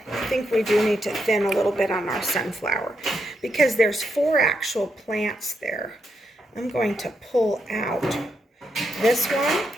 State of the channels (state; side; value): normal; both; correlation 0.81